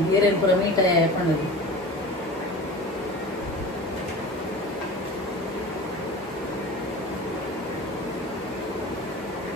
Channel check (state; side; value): normal; both; correlation 0.35